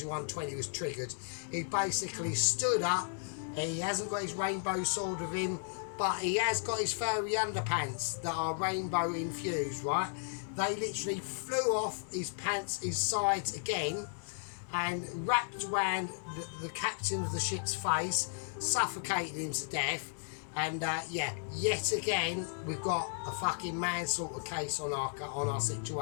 120 was triggered. He basically stood up. He hasn't got his rainbow sword with him, but he has got his furry underpants that are rainbow infused, right? They literally flew off his pants, his sides again, and wrapped around the captain of the ship's face, suffocated him to death. And yeah, yet again, we've got a fucking manslaughter case on our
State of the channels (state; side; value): silent; right; digital silence